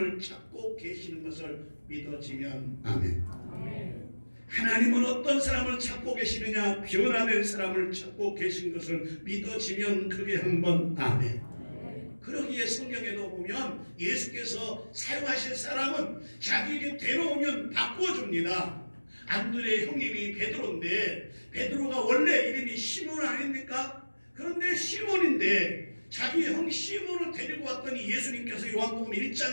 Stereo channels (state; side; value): inverted; both; correlation -1.00